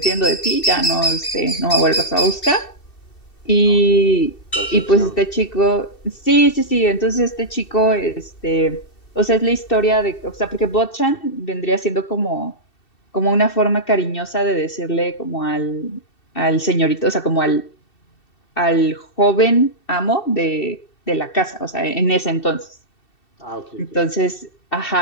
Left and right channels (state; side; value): late; right; 2.7 ms